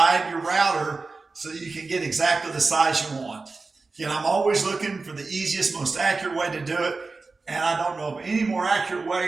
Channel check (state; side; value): quieter; left; 3.9 dB